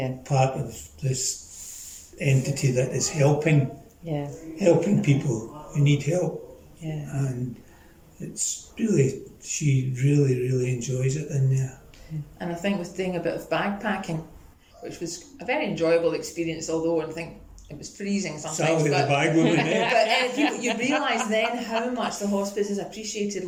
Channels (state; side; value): identical; both; correlation 1.00